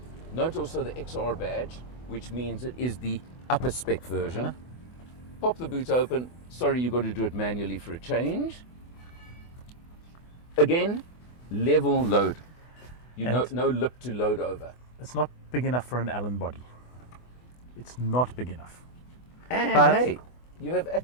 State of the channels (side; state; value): right; late; 24 ms